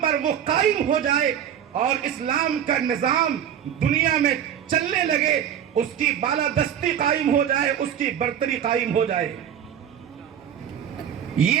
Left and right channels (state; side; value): quieter; left; 9.3 dB